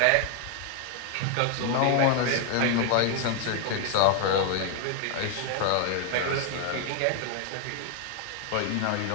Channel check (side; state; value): both; different; correlation 0.00